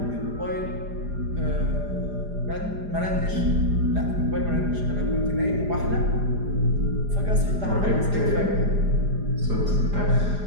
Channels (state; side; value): late; left; 4.9 ms